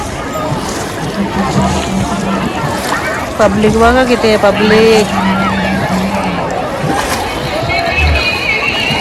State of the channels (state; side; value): identical; both; correlation 1.00